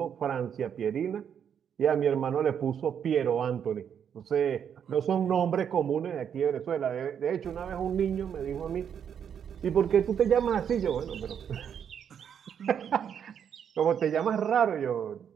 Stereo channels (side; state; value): left; quieter; 8.2 dB